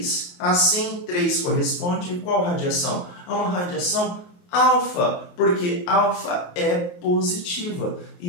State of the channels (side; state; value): right; late; 28 ms